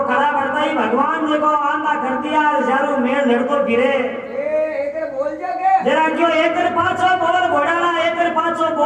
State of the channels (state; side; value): identical; both; correlation 1.00